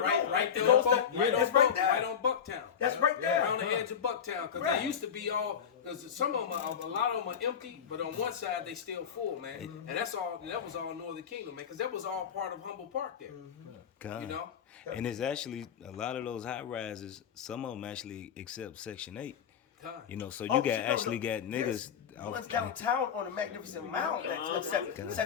there on Bucktown. That's right there. Around the edge of Bucktown, because they used to be all. Because some of them, a lot of them are empty, but on one side they still full, man. And that's all. That was all Northern Kingdom, man, because that was all part of Humboldt Park there. You know. And it's actually a lot of those high rises. Some of them actually accept Section 8. You know, so you got niggas. One's downtown on a magnificent mound that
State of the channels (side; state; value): right; quieter; 7.8 dB